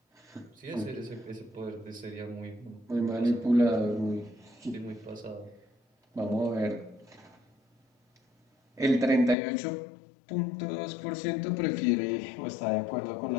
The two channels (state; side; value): drops out; right; at 9.3 s